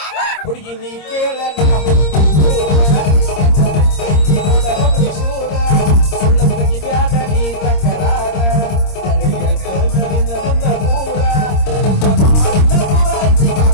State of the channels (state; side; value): late; right; 26 ms